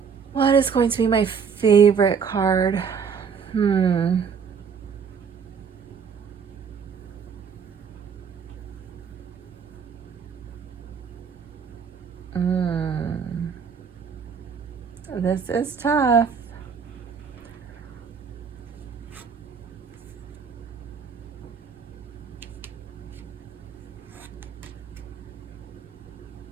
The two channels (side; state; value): left; quieter; 6.4 dB